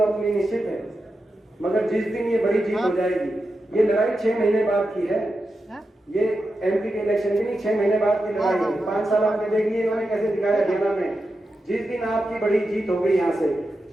अपनी निश्चित है, मगर जिस दिन ये बड़ी जीत हो जाएगी, ये लड़ाई 6 महीने बाद की है। ये एमपी के इलेक्शन की नहीं, 6 महीने बाद की लड़ाई है। 5 साल आपने देखिए इन्होंने कैसे दिखाया हरियाणा में। जिस दिन आपकी बड़ी जीत हो गई यहाँ से,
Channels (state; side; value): normal; both; correlation 0.89